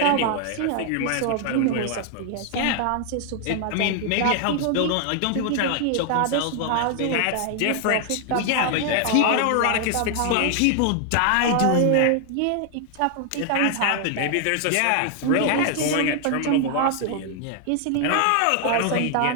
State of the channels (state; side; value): different; both; correlation 0.00